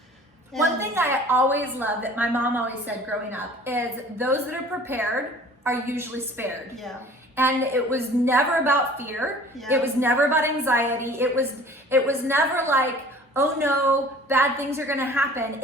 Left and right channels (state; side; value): normal; both; correlation 0.48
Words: One thing I always love that my mom always said growing up is those that are prepared are usually spared. Yeah. And it was never about fear. Yeah. It was never about anxiety. It was never like, oh no, bad things are gonna happen.